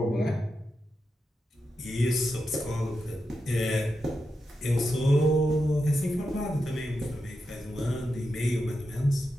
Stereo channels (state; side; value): normal; both; correlation 0.87